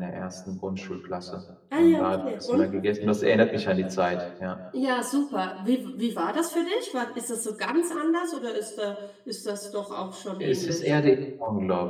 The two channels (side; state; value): both; identical; correlation 1.00